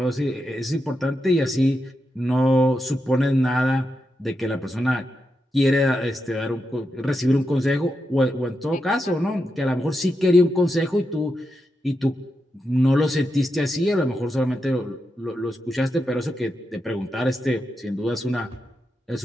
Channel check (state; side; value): normal; both; correlation 0.87